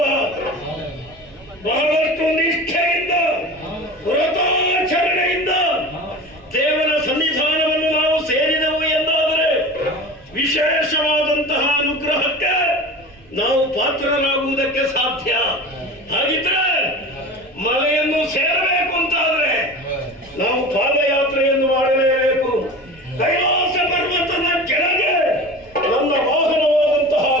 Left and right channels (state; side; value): noise; right; rumble, 27 dB below the sound